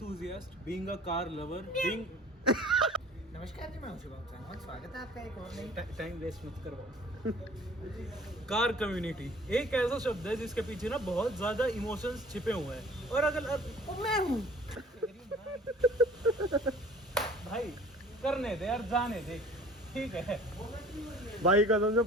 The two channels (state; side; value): normal; both; correlation 0.49